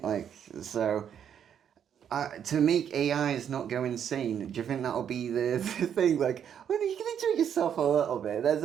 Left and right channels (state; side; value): quieter; left; 8.7 dB